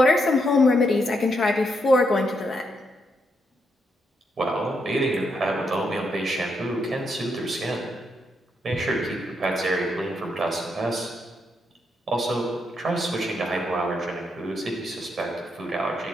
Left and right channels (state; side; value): normal; both; correlation 0.79